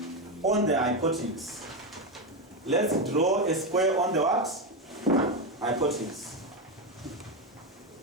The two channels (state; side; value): normal; both; correlation 0.10